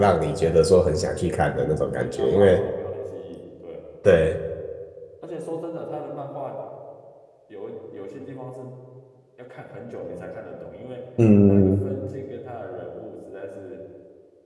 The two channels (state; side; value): identical; both; correlation 1.00